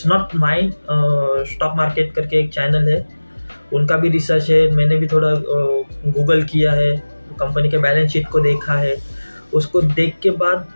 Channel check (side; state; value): both; inverted; correlation -1.00